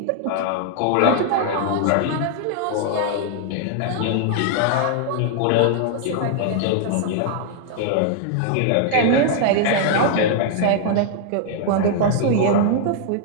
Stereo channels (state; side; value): different; both; correlation 0.00